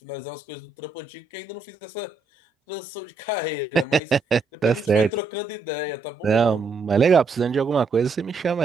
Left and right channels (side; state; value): left; quieter; 4.3 dB